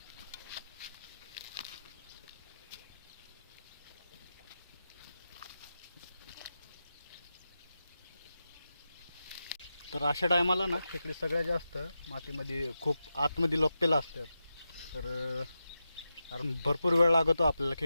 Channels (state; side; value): inverted; both; correlation -0.90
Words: तर अशा टायमाला ना खेकडे सगळ्यात जास्त मातीमध्ये खूप आतमध्ये लपलेला असतात. तर कारण भरपूर वेळ लागतो आपल्याला.